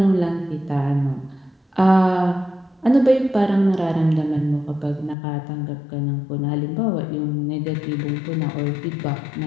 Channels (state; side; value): drops out; right; at 5.2 s